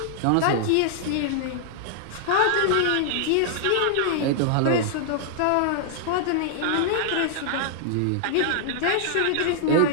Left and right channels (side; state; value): both; different; correlation -0.01